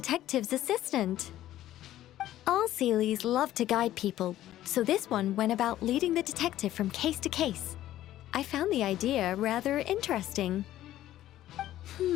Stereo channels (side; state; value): right; quieter; 13.6 dB